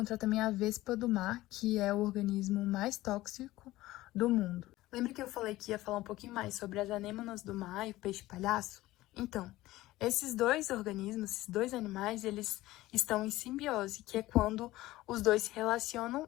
também a vespa do mar, que é o organismo mais tóxico do mundo. Lembra que eu falei que ia falar um pouquinho mais sobre as anêmonas do mar e o peixe-palhaço? Então, esses dois organismos, esses dois animais, eles estão em simbiose, que é quando os dois se relacionam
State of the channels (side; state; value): right; quieter; 17.2 dB